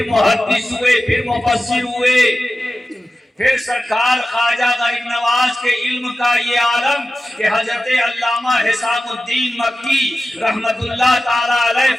محدث ہوئے، پھر مفسر ہوئے، پھر سرکار خواجہ غریب نواز کے علم کا یہ عالم کہ حضرت علامہ حسام الدین مکی رحمت اللہ تعالیٰ علیہ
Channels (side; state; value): both; normal; correlation 0.94